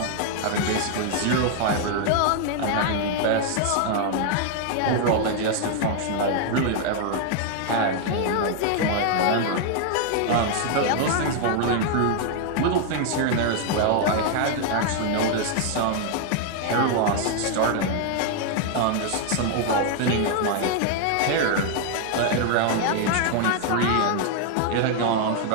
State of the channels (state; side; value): different; both; correlation 0.00